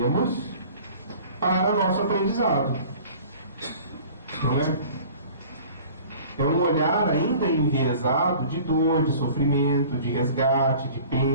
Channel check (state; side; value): inverted; both; correlation -0.46